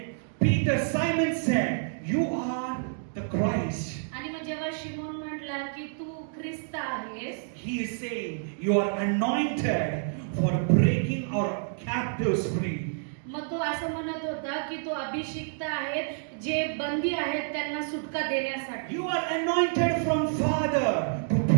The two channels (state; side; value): silent; left; digital silence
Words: Simon said, you are the Christ. आणि मग जेव्हा शिमोन म्हटला की तू ख्रिस्त आहेस, He is saying, you are anointed for breaking our captives free. मग तो असं म्हणत होता की तो अभिषिक्त आहे जे बंदी आहेत त्यांना सुटका देण्यासाठी. You are anointed from Father to